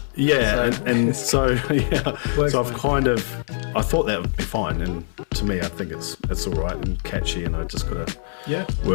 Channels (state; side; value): silent; right; 64 dB below the other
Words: Yeah, so I thought that would be fine, and to me I think it's all right and catchy, and I just gotta